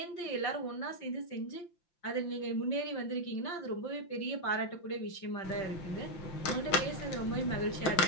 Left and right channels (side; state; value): right; late; 5.8 ms